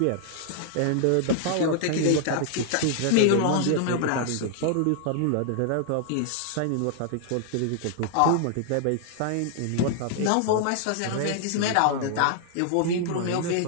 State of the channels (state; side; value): different; both; correlation 0.00